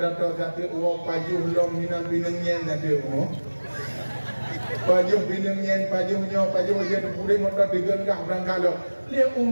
satu uang pajuh long minang binengnya nanti uang pajuh binengnya pajuh dia udet motor digengah berangkat lo dia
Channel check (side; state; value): both; inverted; correlation -1.00